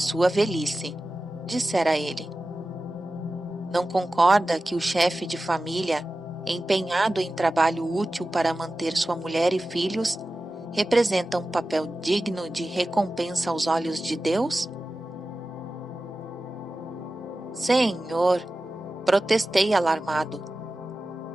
velhice, dissera ele. Não concorda que o chefe de família, empenhado em trabalho útil para manter sua mulher e filhos, representa um papel digno de recompensa aos olhos de Deus? Senhor, protestei alarmado.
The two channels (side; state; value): both; normal; correlation 0.95